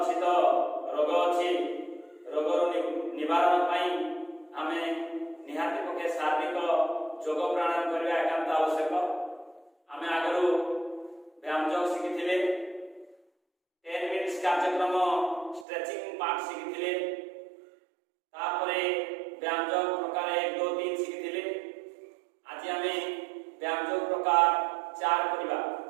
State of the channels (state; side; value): drops out; left; at 15.7 s